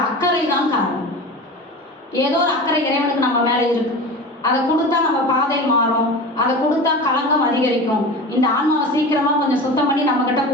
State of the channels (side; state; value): both; normal; correlation 0.32